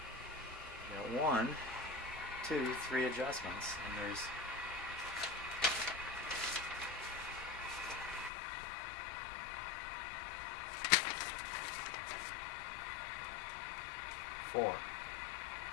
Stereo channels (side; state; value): right; drops out; at 8.3 s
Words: Got 1, 2, 3 adjustments, and there's four.